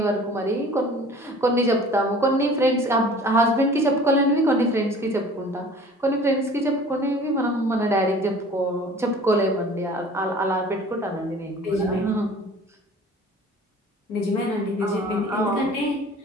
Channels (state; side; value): normal; both; correlation 0.46